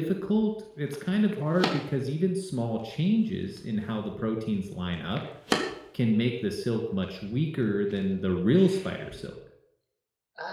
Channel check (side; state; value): both; identical; correlation 1.00